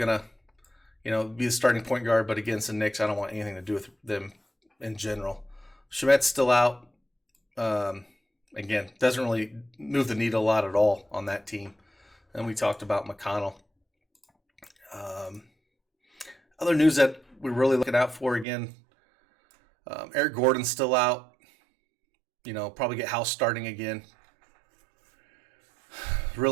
to, be the starting point guard, but against the Knicks, I don't want anything to do with them in general. Shamet's still out. Again, doesn't really move the needle a lot at all on that team. And we talked about McConnell. Other news that we're really looking out for, again, Eric Gordon's still out. Probably get House starting again.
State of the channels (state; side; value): drops out; left; at 18.4 s